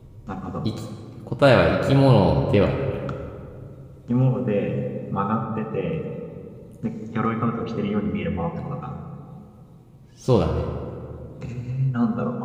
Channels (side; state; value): both; identical; correlation 1.00